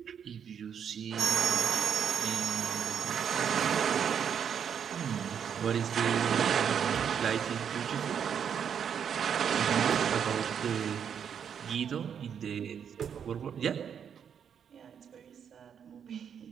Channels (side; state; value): left; quieter; 7.9 dB